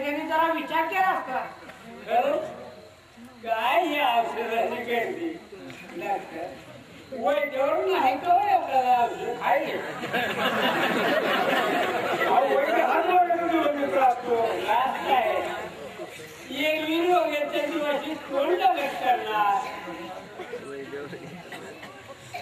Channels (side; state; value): both; identical; correlation 1.00